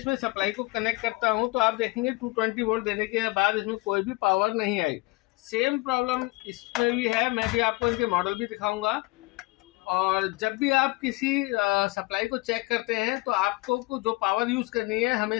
सप्लाई को कनेक्ट करता हूँ तो आप देखेंगे 220 वोल्ट देने के बाद इसमें कोई भी पावर नहीं आई। सेम प्रॉब्लम इसमें भी है, मैं भी आपको इनके मॉडल भी दिखाऊंगा। और जब भी आप किसी सप्लाई को चेक करते हैं तो आपको जो पावर यूज करनी है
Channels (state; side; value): quieter; right; 22.9 dB